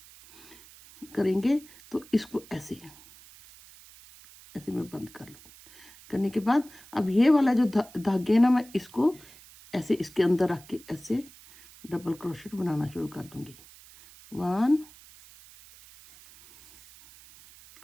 करेंगे तो इसको ऐसे मैं बंद कर लूँ। करने के बाद अब ये वाला जो धागे है ना, मैं इसको ऐसे इसके अंदर रख के ऐसे डबल क्रोशेट बनाना शुरू कर दूंगी। 1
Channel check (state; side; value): noise; right; hiss, 22 dB below the sound